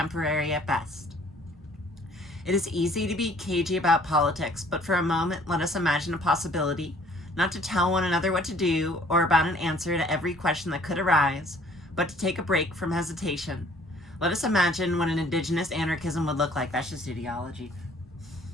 at best. It is easy to be cagey about politics, but for a moment let us imagine a possibility, not to tell one another what to do or about an answer to every question that could arise, but to take a break from hesitation. Let us imagine what an Indigenous anarchism would look like. That's just ideology.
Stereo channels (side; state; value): both; normal; correlation 0.57